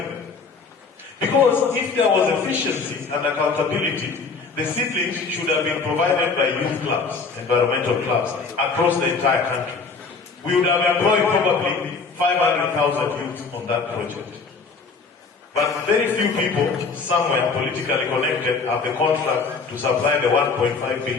Because if there was efficiency and accountability, the seedlings should have been provided by youth clubs, environmental clubs, across the entire country. We would have employed probably 500,000 youth on that project. But very few people, somewhere politically connected, have the contract to supply the 1.5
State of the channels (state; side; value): quieter; right; 4.7 dB